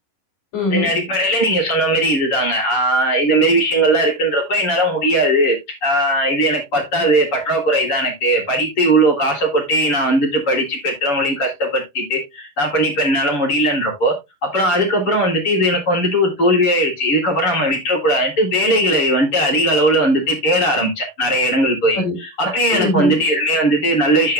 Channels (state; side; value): late; right; 11 ms